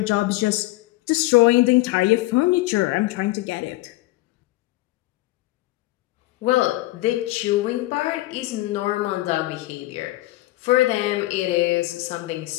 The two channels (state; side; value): quieter; right; 18.7 dB